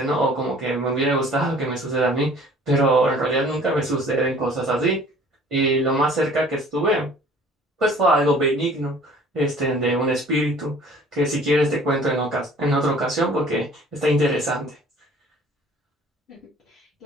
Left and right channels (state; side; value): normal; both; correlation 0.51